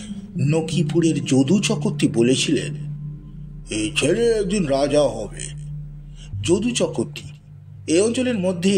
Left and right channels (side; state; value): both; identical; correlation 1.00